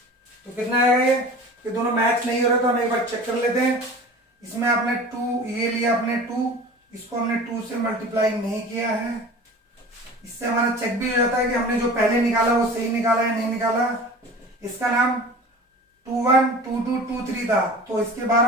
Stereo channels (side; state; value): both; normal; correlation 0.39